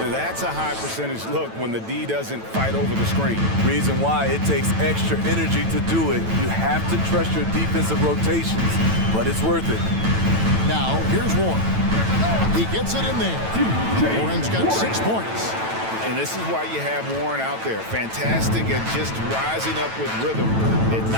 That's a high percentage look when the D doesn't fight over the screen. Reason why it takes extra energy to do it. You have to trust your defensive rotations, but it's worth it. Now, here's Warren. He gets it in there. Warren's got 6 points. And this is why you have Warren out there. Fantastic at just rising up with rhythm and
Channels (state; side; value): late; left; 9.0 ms